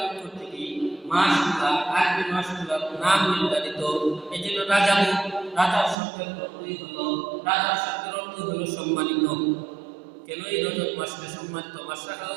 কর্তৃক মাসগুলা, আরবি মাসগুলার নাম নির্ধারিত। এই জন্য রাজার শব্দের অর্থ হলো সম্মানিত। কেন এই রজব মাসকে সম্মানিত মাস রাখা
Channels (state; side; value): drops out; left; at 6.0 s